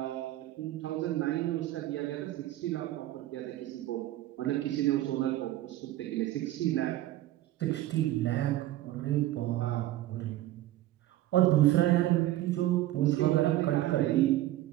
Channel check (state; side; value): quieter; left; 15.1 dB